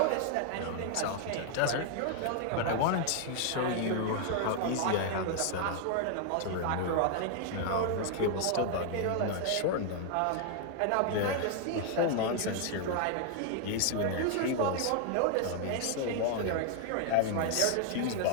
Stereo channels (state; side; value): different; both; correlation 0.00